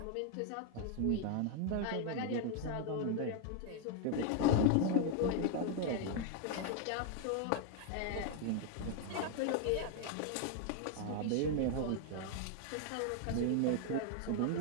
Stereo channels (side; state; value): both; different; correlation 0.00